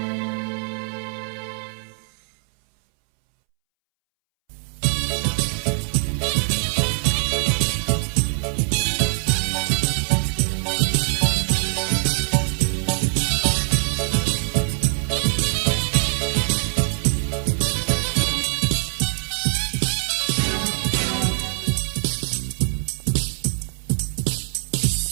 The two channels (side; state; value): left; silent; 64 dB below the other